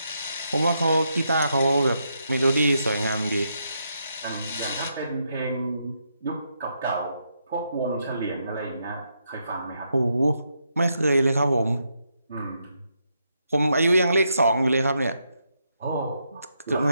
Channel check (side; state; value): both; inverted; correlation -0.80